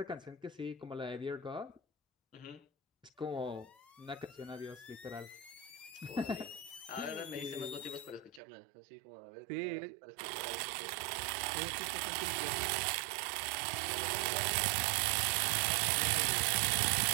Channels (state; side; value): drops out; left; at 8.4 s